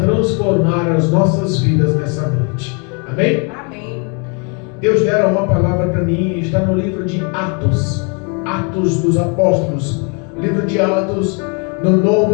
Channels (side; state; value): right; quieter; 36.1 dB